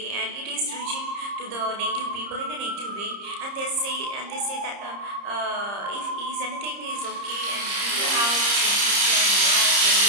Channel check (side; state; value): left; late; 30 ms